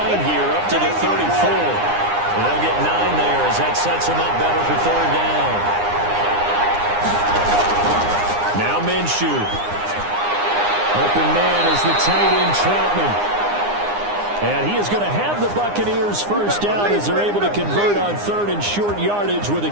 here up to the 34. And they'll get 9 there as that sets him up better for 3rd down. Now Minshew. Open man is the tight end Troutman. And he is going to have the Buccaneers first down as they're able to convert on 3rd and short yardage with a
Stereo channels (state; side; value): late; left; 9.8 ms